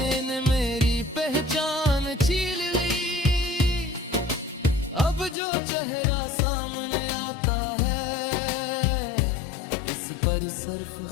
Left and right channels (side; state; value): right; drops out; at 5.4 s